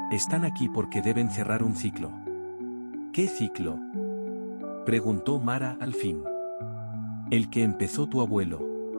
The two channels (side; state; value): both; inverted; correlation -1.00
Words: están aquí porque deben cerrar un ciclo. ¿Qué ciclo?, preguntó Mara al fin. El que empezó tu abuelo.